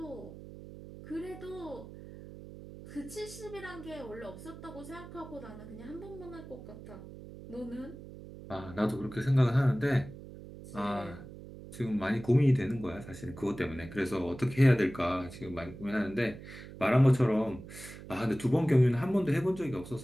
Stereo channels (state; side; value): noise; right; hum, 14 dB below the sound